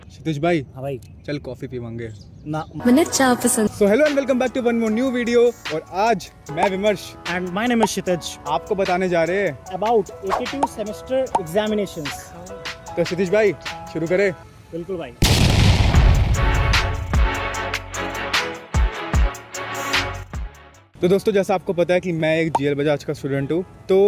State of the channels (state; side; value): identical; both; correlation 1.00